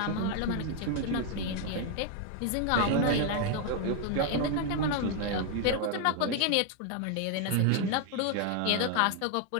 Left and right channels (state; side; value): different; both; correlation 0.00